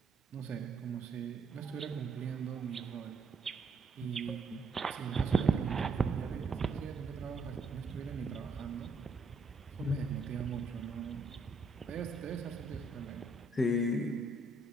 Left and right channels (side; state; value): left; quieter; 3.4 dB